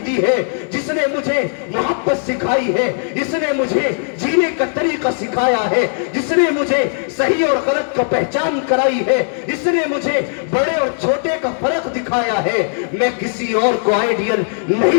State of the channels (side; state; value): right; silent; digital silence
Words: دی ہے, جس نے مجھے محبت سکھائی ہے, جس نے مجھے جینے کا طریقہ سکھایا ہے, جس نے مجھے صحیح اور غلط کا پہچان کرائی ہے, جس نے مجھے بڑے اور چھوٹے کا فرق دکھایا ہے. میں کسی اور کو آئیڈیل